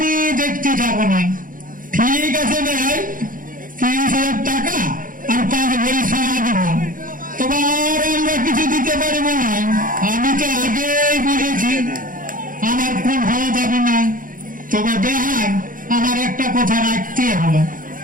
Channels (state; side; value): late; left; 0.40 ms